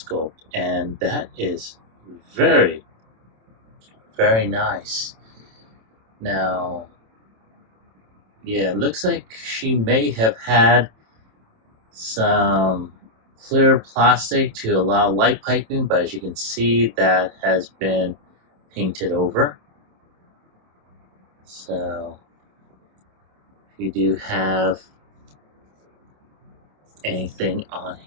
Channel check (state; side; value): late; left; 27 ms